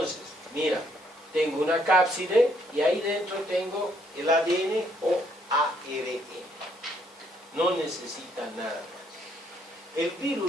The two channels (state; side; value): normal; both; correlation 0.69